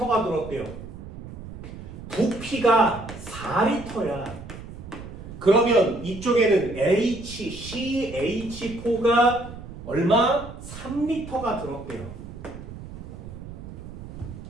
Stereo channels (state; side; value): noise; right; rumble, 12 dB below the sound